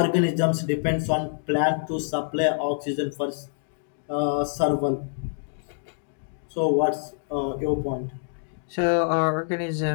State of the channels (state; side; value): silent; right; digital silence